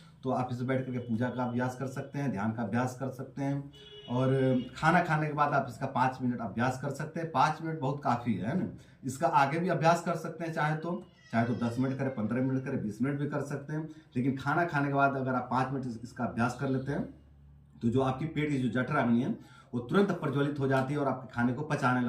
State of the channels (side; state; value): both; identical; correlation 1.00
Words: तो आप इसमें बैठ करके पूजा का अभ्यास कर सकते हैं, ध्यान का अभ्यास कर सकते हैं। और खाना खाने के बाद आप इसका 5 मिनट अभ्यास कर सकते हैं। 5 मिनट बहुत काफ़ी है ना। इसका आगे भी अभ्यास कर सकते हैं, चाहे तो 10 मिनट करें, 15 मिनट करें, 20 मिनट भी कर सकते हैं। लेकिन खाना खाने के बाद अगर आप 5 मिनट इसका अभ्यास कर लेते हैं तो जो आपकी पेट की जो जठराग्नि है वो तुरंत प्रज्वलित हो जाती है और आपके खाने को पचाने